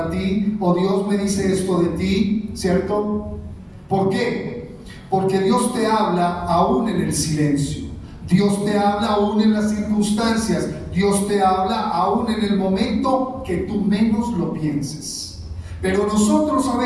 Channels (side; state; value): both; identical; correlation 1.00